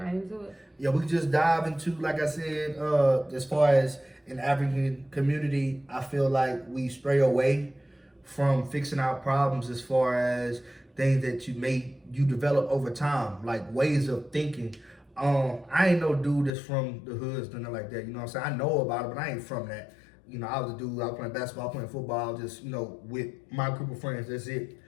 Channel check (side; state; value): right; drops out; at 16.5 s